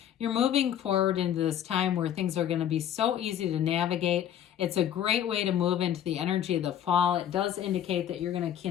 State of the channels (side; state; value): right; quieter; 10.4 dB